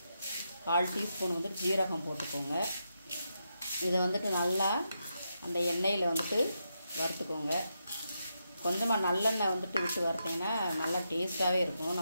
1/4 டீஸ்பூன் வந்துட்டு ஜீரகம் போட்டுக்கோங்க. இதை வந்துட்டு நல்லா அந்த எண்ணெயில் வந்துட்டு வறுத்துக்கோங்க. கொஞ்சமாக நல்லெண்ணெய் வந்துட்டு விட்டு வறுத்திங்கன்னா நல்லா டேஸ்ட்டாகவே இருக்கும்.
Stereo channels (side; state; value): both; inverted; correlation -0.84